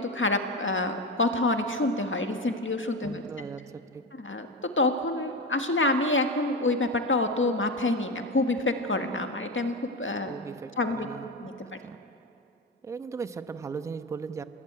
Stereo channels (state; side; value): normal; both; correlation 0.20